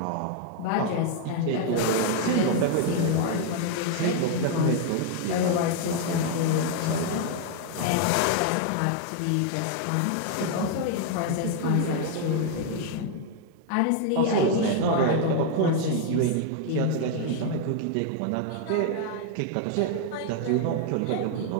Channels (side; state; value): both; different; correlation 0.00